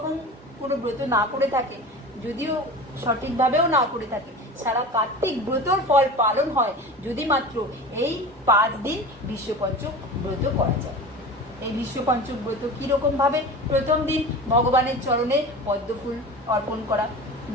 কোনো ব্রত না করে থাকে, যদিও সঠিকভাবেও না করে থাকে, সারা কার্তিক ব্রতর ফল পালন হয় যদি মাত্র এই 5 দিন বিশ্ব পঞ্চক ব্রত করা যায়। এই বিশ্ব পঞ্চক ব্রত কিরকম ভাবে? প্রথম দিন ভগবানের চরণে পদ্মফুল অর্পণ করা,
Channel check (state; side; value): normal; both; correlation 0.33